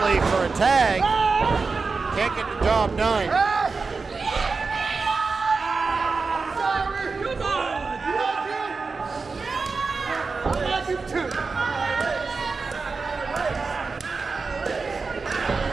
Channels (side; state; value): left; quieter; 4.4 dB